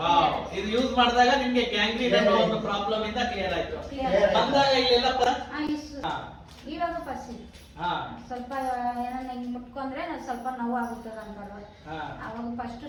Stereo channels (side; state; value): both; identical; correlation 1.00